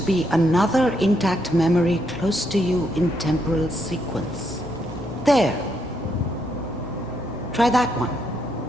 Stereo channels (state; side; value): normal; both; correlation 0.77